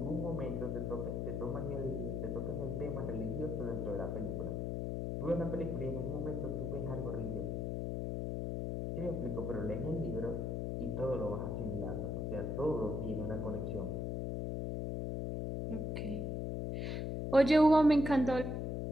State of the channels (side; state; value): left; noise; hum, 1 dB below the sound